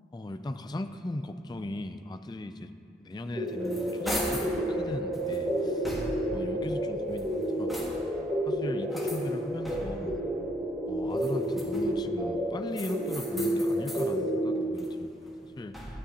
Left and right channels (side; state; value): both; normal; correlation 0.68